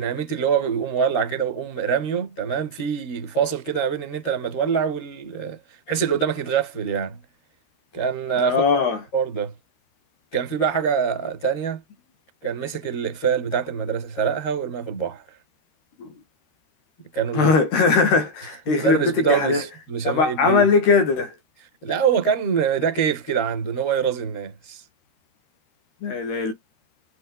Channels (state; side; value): late; right; 13 ms